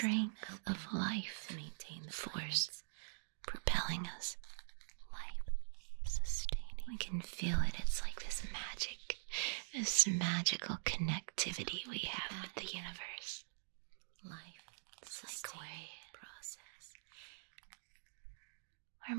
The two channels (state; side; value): silent; left; digital silence